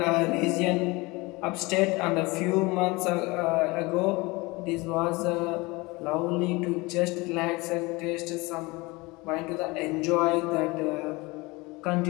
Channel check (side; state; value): right; quieter; 24.0 dB